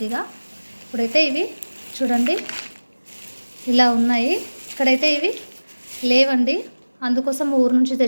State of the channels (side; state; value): both; inverted; correlation -1.00